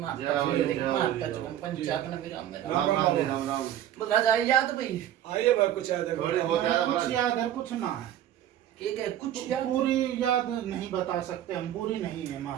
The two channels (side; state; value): left; quieter; 11.6 dB